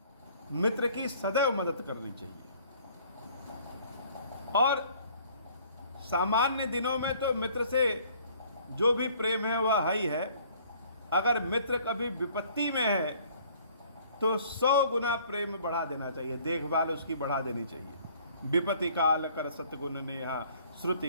मित्र की सदैव मदद करनी चाहिए। और सामान्य दिनों में तो मित्र से जो भी प्रेम है वह है ही है। अगर मित्र कभी विपत्ति में है तो 100 गुना प्रेम बढ़ा देना चाहिए, देखभाल उसकी बढ़ा देनी चाहिए। विपत्ति काल कर सतगुण नेहा,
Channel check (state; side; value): inverted; both; correlation -0.56